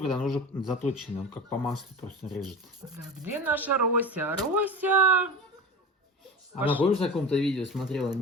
он уже заточенный, он как по маслу просто режет. Где наша Рося? Рося! Она, помнишь, на каком-то видео смотрела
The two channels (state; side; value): normal; both; correlation 0.30